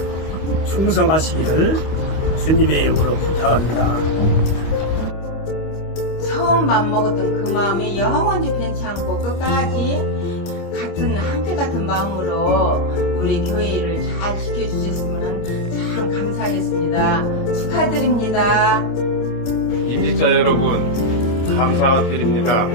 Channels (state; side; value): late; right; 25 ms